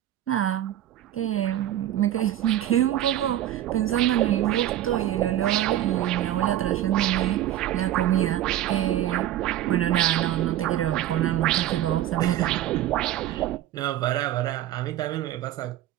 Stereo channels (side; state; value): left; quieter; 12.6 dB